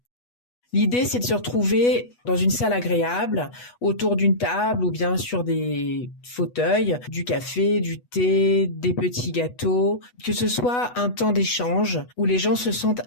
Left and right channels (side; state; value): right; late; 8.2 ms